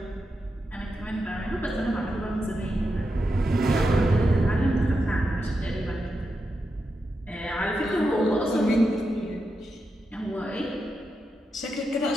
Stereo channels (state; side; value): normal; both; correlation 0.87